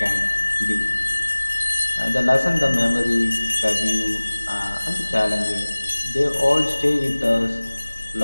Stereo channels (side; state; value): both; inverted; correlation -1.00